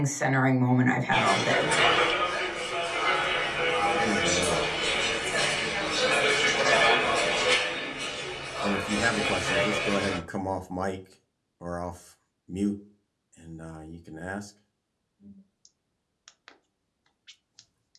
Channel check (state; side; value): identical; both; correlation 1.00